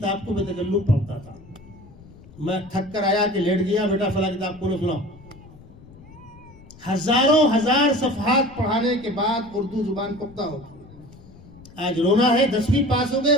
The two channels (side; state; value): left; noise; rumble, 21 dB below the sound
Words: کو بے تکلف پڑھتا تھا. میں تھک کر آیا کہ لیٹ گیا، بیٹا فلاں کتاب کو سناؤ. ہزار صفحات پڑھانے کے بعد اردو زبان پختہ ہوتی. آج رونا ہے، 10ویں پاس ہو گئے،